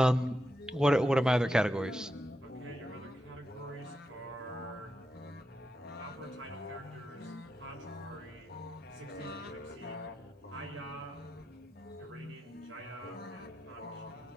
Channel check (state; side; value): normal; both; correlation 0.87